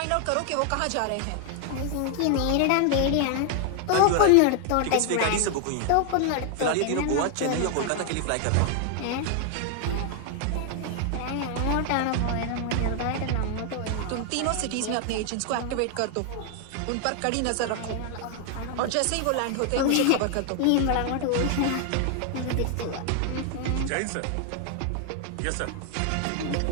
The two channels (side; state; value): both; different; correlation 0.00